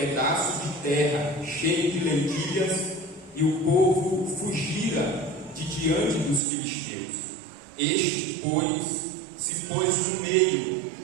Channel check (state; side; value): drops out; left; at 6.4 s